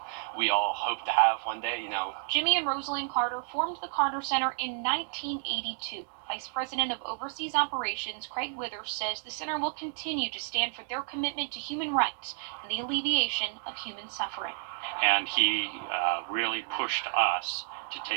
we all hope to have one day, Jimmy and Rosalind Carter formed the Carter Center in 1982. Vice President of Overseas Operations Craig Withers says the center will continue to stand for their commitment to human rights and the alleviation of human suffering. And he really pushed us to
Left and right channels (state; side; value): silent; left; 57 dB below the other